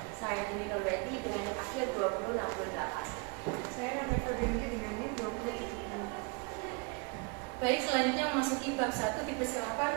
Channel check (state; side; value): quieter; left; 31.0 dB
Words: Saya Dini Nurweti dengan NIM akhir 2068. Saya Nanda Febrianti dengan NIM 2070. Baik, selanjutnya memasuki bab 1, dipersilakan